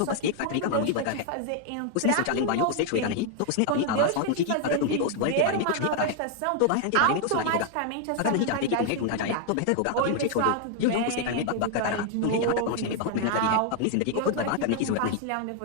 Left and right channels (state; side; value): different; both; correlation 0.00